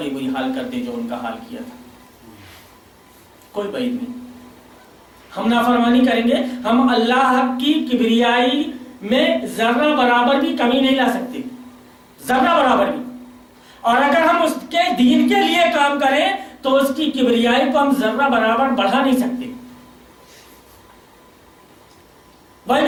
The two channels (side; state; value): both; identical; correlation 1.00